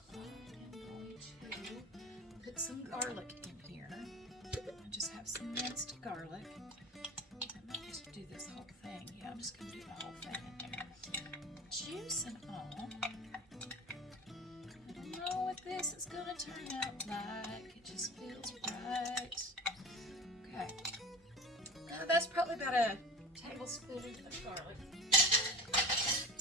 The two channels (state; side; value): normal; both; correlation 0.32